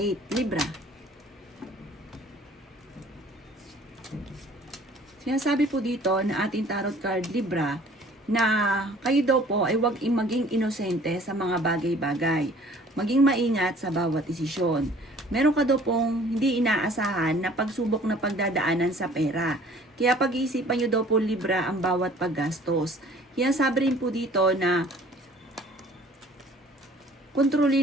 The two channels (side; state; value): both; normal; correlation 0.53